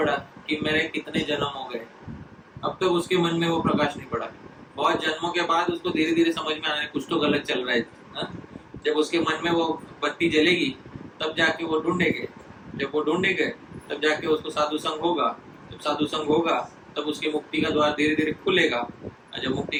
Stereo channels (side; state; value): both; identical; correlation 1.00